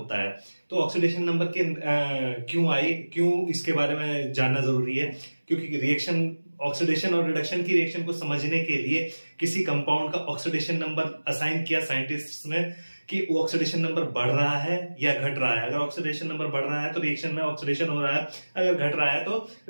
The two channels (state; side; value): inverted; both; correlation -1.00